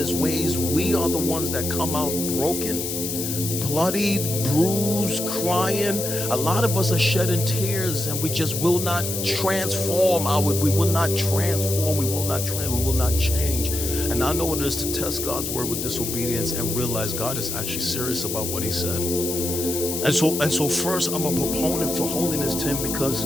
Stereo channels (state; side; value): noise; left; hiss, 4 dB below the sound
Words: his ways, we are the ones that come out broken, bloodied, bruised, crying. A lot of us are shedding tears, and we just will not transform. We will not transform. We will not change. And I know what it is to test God's word with disobedience and realize God is actually serious about what he said. And so first, I'm a proponent for holiness, Tim, because